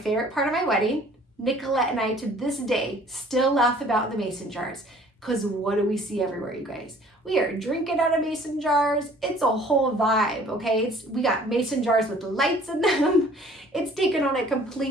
part of my wedding. Nicolette and I, to this day, still laugh about the mason jars. Because what do we see everywhere, you guys? We are drinking out of mason jars. It's a whole vibe, okay? We got mason jars with lights in them. It's taken on a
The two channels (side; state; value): both; normal; correlation 0.53